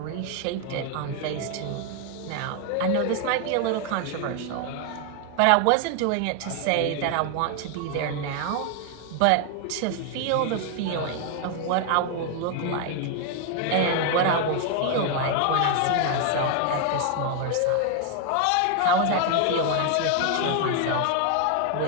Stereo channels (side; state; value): both; different; correlation 0.00